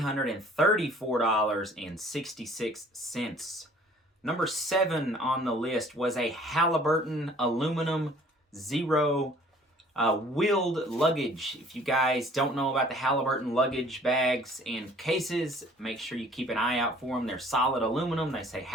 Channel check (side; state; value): both; normal; correlation 0.54